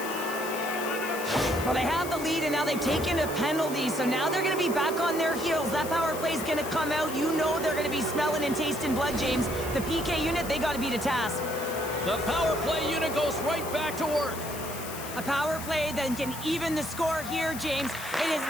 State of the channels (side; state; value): left; noise; hiss, 11 dB below the sound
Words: Well, they have the lead, and now they've taken a penalty, so now they're going to be back on their heels. That power play's going to come out. You know they're going to be smelling and tasting blood, James. The PK unit, they got to beat a task. The power play unit goes right back to work. A power play that can even the score here, James. It is